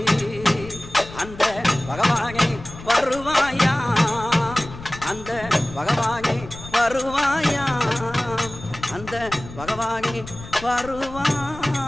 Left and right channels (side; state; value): left; noise; rumble, 14 dB below the sound